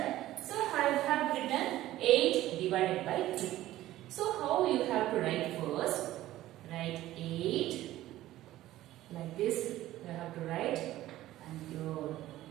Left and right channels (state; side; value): quieter; left; 15.0 dB